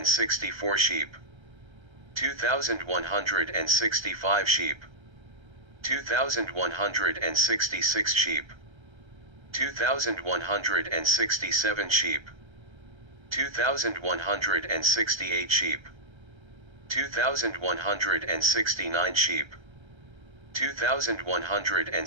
sheep, 2,165 sheep, 2,166 sheep, 2,167 sheep, 2,168 sheep, 2,169 sheep,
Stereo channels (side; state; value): left; late; 1.3 ms